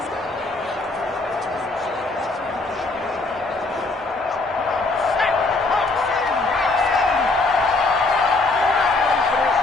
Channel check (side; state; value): right; quieter; 3.3 dB